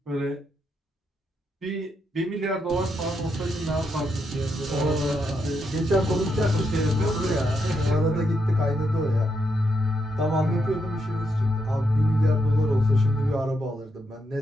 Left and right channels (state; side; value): normal; both; correlation 0.80